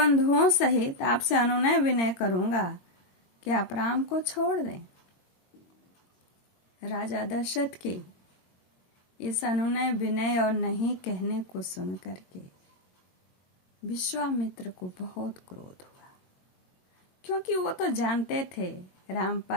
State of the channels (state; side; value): late; right; 22 ms